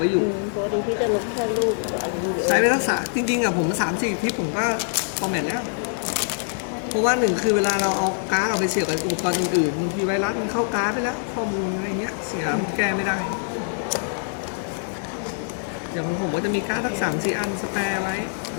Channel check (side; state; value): right; silent; 63 dB below the other